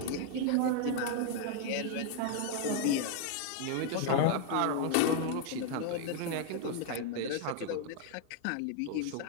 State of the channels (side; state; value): both; different; correlation 0.00